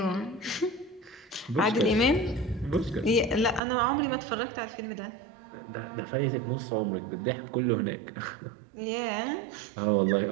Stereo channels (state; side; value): drops out; left; at 3.6 s